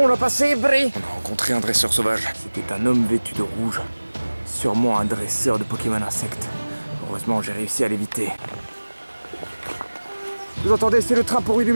on l'a passé, Bri. On a rencontré un dresseur sauvage. C'était un homme vêtu de rouge. Sûrement un dresseur de Pokémon insectes. Heureusement, j'ai réussi à l'éviter. Vous entendez, c'est le train pour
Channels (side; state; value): both; inverted; correlation -1.00